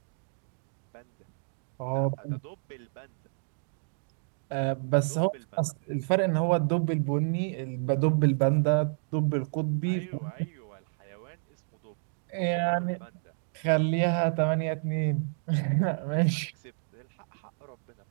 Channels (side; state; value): left; silent; digital silence